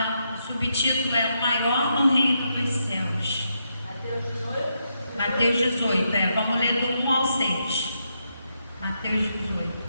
o subtítulo é o maior no reino dos céus. Mateus 18, vamos ler do 1 ao 6. Mateus 18.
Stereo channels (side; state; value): both; inverted; correlation -0.81